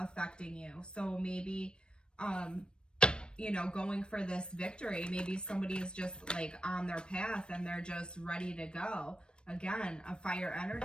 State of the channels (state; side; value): late; right; 0.054 ms